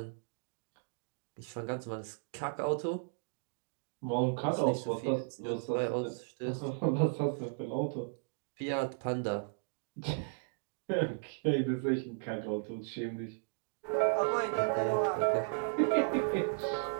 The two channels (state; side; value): silent; left; digital silence